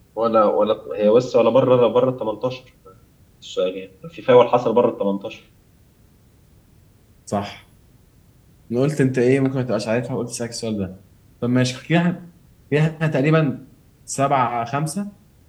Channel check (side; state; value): both; identical; correlation 1.00